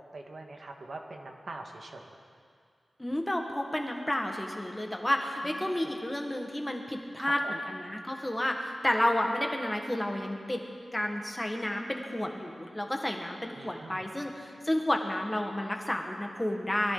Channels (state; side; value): normal; both; correlation 0.98